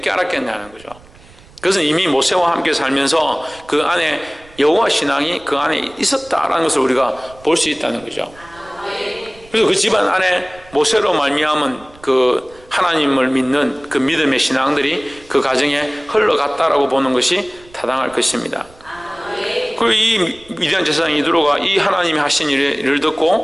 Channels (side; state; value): right; noise; rumble, 25 dB below the sound